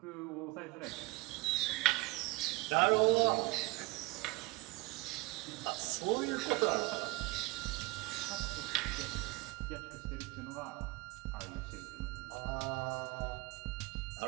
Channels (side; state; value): left; quieter; 23.5 dB